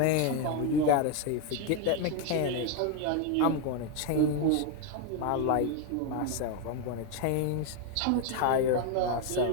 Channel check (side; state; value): both; different; correlation 0.01